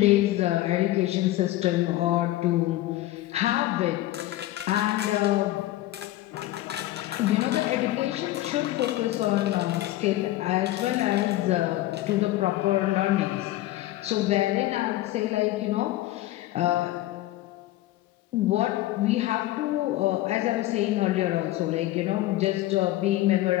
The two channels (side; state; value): right; quieter; 15.9 dB